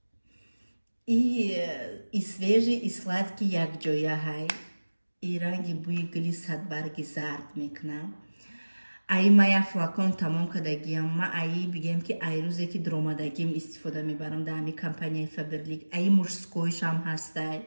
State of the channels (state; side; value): inverted; both; correlation -1.00